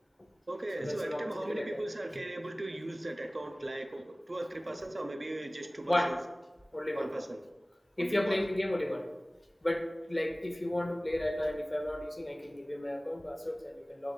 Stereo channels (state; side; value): normal; both; correlation 0.98